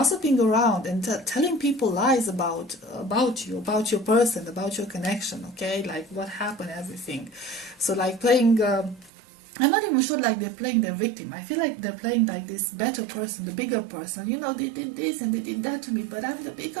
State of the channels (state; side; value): drops out; left; at 9.1 s